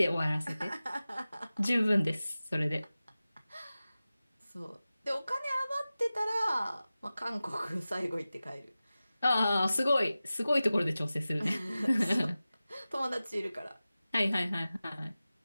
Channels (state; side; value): inverted; both; correlation -0.96